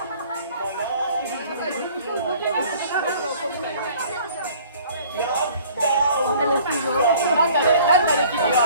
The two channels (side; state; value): both; inverted; correlation -0.52